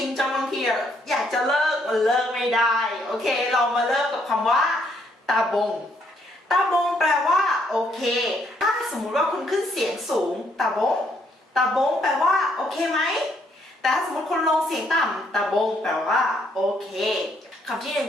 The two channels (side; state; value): both; normal; correlation 0.71